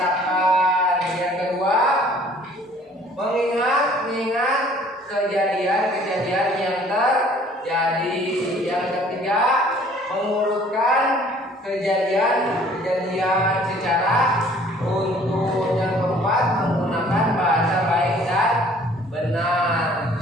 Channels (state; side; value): normal; both; correlation 0.55